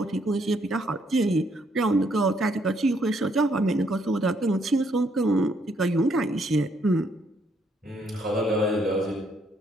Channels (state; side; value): normal; both; correlation 0.71